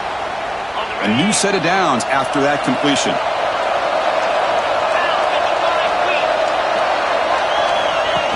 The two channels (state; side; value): identical; both; correlation 1.00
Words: A new set of downs after that completion.